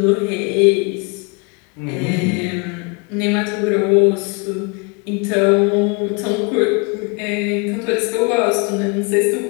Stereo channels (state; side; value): quieter; right; 31.9 dB